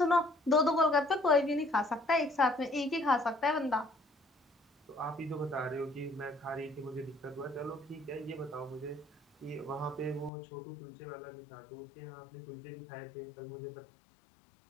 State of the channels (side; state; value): right; drops out; at 10.3 s